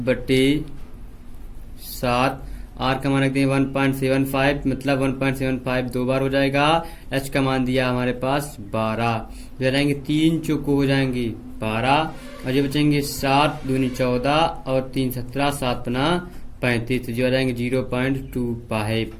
r का मान रख देंगे 1.75, मतलब 1.75 दो बार हो जाएगा। h का मान दिया हमारे पास 12, हो जाएंगे 3 चौको हो जाएंगे 12, और ये बचेंगे 7 दूनी 14 और 3 17, 7 पना 35, तो जो आ जाएंगे 0.25।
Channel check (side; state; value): both; identical; correlation 1.00